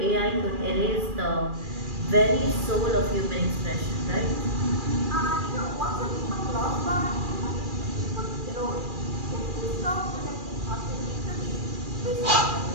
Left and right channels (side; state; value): left; late; 2.4 ms